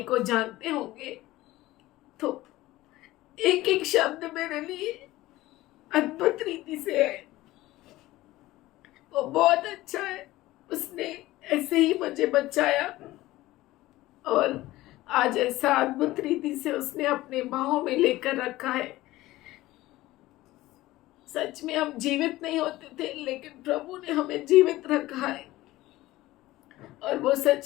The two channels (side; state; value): right; quieter; 17.3 dB